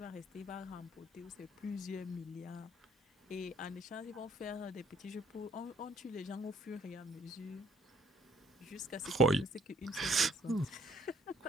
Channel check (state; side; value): normal; both; correlation 0.63